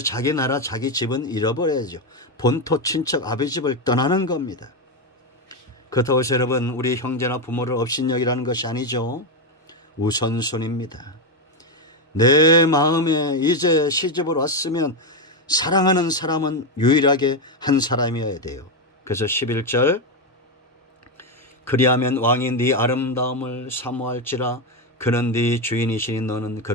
나라 자기 집은 잃어버려야죠. 본토 친척 아버지 집을 떠나는 겁니다. 그렇다고 해서 여러분 우리 형제나 부모를 업신여기라는 것이 아니죠. 우선순위입니다. 내 마음에 이제 시집을 왔으면 사랑하는 사람은 유일하게 한 사람이어야 돼요. 그래서 11절 그리하면 왕이 네 아름다움을 사모할지라 그는 네 주인이시니 너는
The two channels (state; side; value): normal; both; correlation 0.07